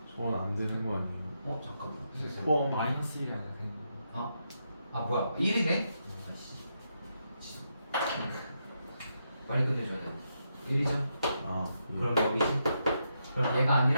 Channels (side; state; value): both; inverted; correlation -0.82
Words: 2. 저건 안 되는 거 아니에요? 잠깐만. 마이너스 1이 아니라 되는 거. 아 뭐야 1이네? 빨리 끝내줘야 돼. 1이죠? 아, 그럼 여기지? 그럼 얘가